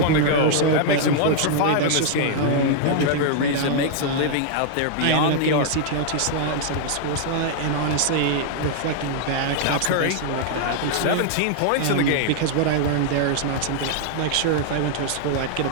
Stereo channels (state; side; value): different; both; correlation -0.01